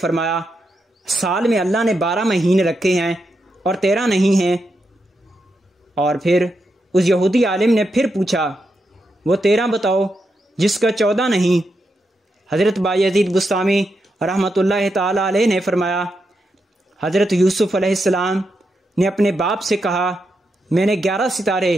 साल में अल्लाह ने 12 महीने रखे हैं और 13 नहीं हैं। और फिर उस यहूदी आलिम ने फिर पूछा, वो 13 बताओ जिसका 14 नहीं। हज़रत बायज़ीद बुस्तामी रहमतुल्लाहि ताला अलैह ने फरमाया, हज़रत यूसुफ अलैहिस्सलाम ने अपने बाप से कहा, मैंने 11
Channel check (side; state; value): both; normal; correlation 0.84